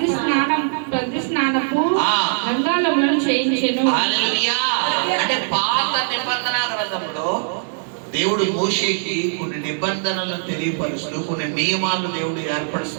స్నానపు గంగాళములను చేయించెను. అంటే పాత నిబంధన గ్రంథంలో దేవుడు మోషేకి కొన్ని నిబంధనలను తెలియపరుస్తూ, కొన్ని నియమాలను దేవుడు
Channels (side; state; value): left; silent; digital silence